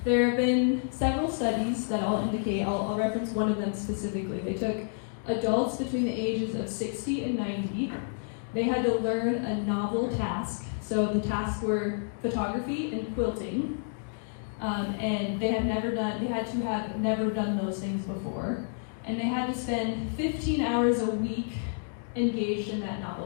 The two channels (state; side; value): silent; right; digital silence